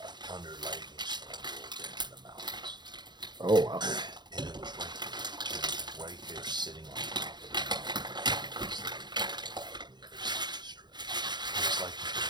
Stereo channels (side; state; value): left; late; 0.21 ms